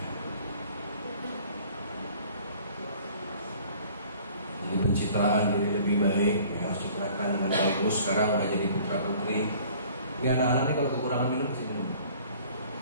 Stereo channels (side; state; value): both; inverted; correlation -0.52